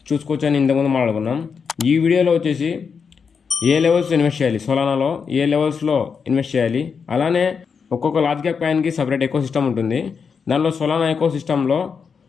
చూసుకోవచ్చు అని ఇంతకుముందు మాట్లాడుకున్నాం. ఈ వీడియోలో వచ్చేసి ఏ లెవెల్స్ ఇన్వెస్ట్ చేయాలి, సోలానాలో ఏ లెవెల్స్లో ఇన్వెస్ట్ చేయాలి, అలానే ఒక్కొక్క లార్జ్ క్యాప్ కాయిన్కి సపరేట్ ఎకో సిస్టమ్ ఉంటుంది. దానిలో సోలానా ఎకో సిస్టంలో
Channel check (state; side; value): quieter; right; 6.0 dB